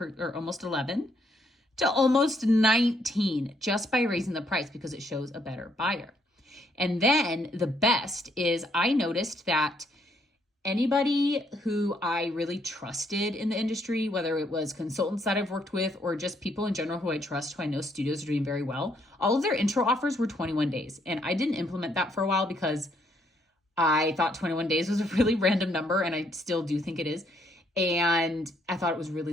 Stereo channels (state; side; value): normal; both; correlation 0.71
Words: or almost 11 to almost 19 just by raising the price because it shows a better buyer. And then the best is I noticed that anybody who I really trusted in the industry, whether it was consultants that I've worked with or just people in general who I trust, who I know studios are doing very well, all of their intro offers were 21 days. And I didn't implement that for a while because I thought 21 days was a really random number, and I still do think it is. And I thought it was